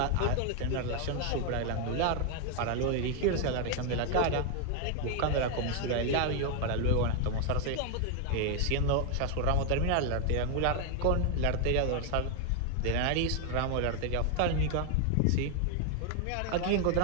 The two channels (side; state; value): both; different; correlation 0.01